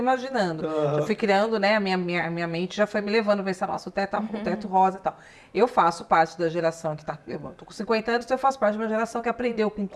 Aham. Eu fui criando, né, a minha mente já foi me levando a pensar, nossa, o teto rosa e tal. Eu faço parte da geração que tá, eu tô com 50 anos, então eu faço parte de uma geração que aprendeu com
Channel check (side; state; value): both; identical; correlation 1.00